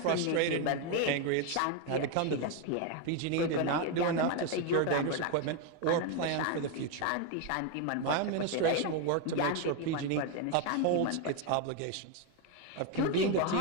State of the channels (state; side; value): different; both; correlation 0.01